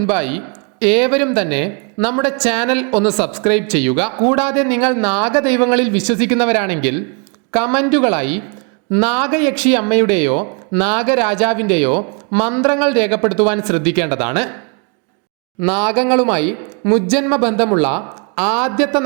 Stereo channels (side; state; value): left; quieter; 35.8 dB